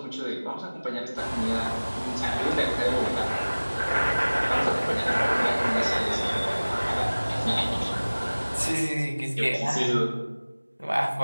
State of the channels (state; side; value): inverted; both; correlation -1.00